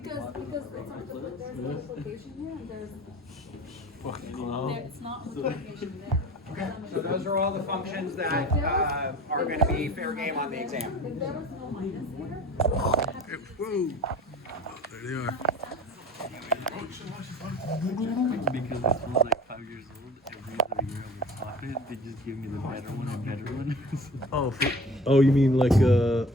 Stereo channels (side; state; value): both; normal; correlation 0.41